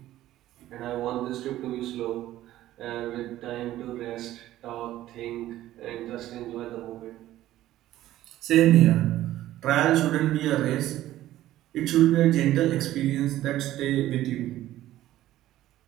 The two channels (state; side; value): quieter; left; 14.2 dB